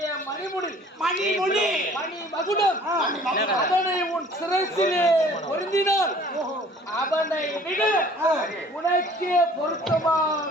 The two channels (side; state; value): both; normal; correlation 0.52